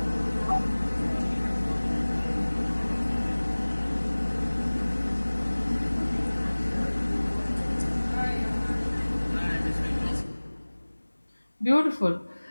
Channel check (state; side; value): inverted; both; correlation -1.00